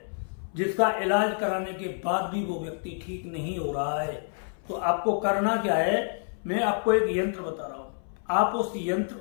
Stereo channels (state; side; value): silent; right; 59 dB below the other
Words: जिसका इलाज कराने के बाद भी वो व्यक्ति ठीक नहीं हो रहा है, तो आपको करना क्या है, मैं आपको एक यंत्र बता रहा हूं। आप उस यंत्र